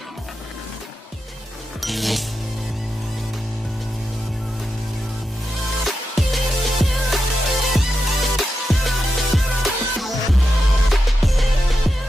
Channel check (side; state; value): both; normal; correlation 0.88